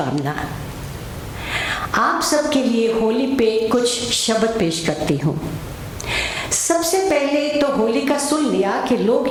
आप सबके लिए होली पे कुछ शब्द पेश करती हूँ। सबसे पहले तो होली का सुन लिया कि लोग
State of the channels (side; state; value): both; identical; correlation 1.00